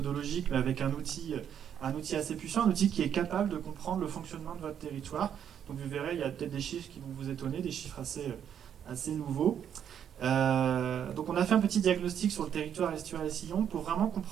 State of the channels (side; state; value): left; quieter; 8.9 dB